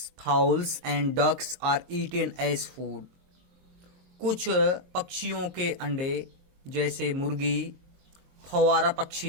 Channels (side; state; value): left; late; 22 ms